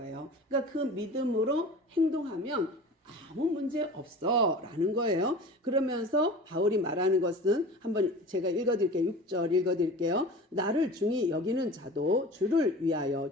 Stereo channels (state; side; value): normal; both; correlation 0.37